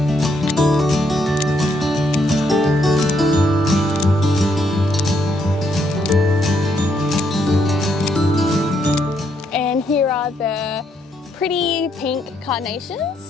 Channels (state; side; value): normal; both; correlation 0.75